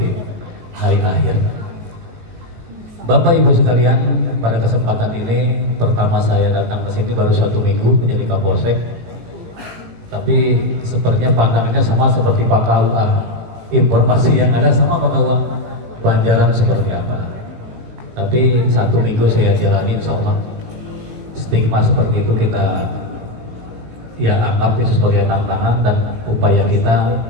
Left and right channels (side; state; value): left; late; 18 ms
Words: hari akhir. Bapak Ibu sekalian, pada kesempatan ini pertama saya datang ke sini baru 1 minggu menjadi Kapolsek, tapi sepertinya pandangannya sama seperti Pak KUA. Informasi yang ada sama Pak KUA, Banjaran seperti apa. Tapi 1 minggu saya jalanin sama stigma seperti itu kita ya anggap itu sebagai tantangan dan upaya kita